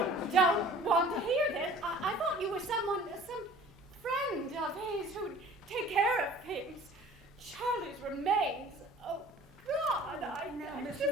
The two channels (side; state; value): both; normal; correlation 0.47